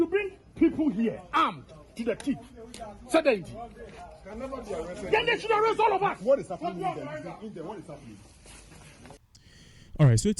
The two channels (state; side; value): identical; both; correlation 1.00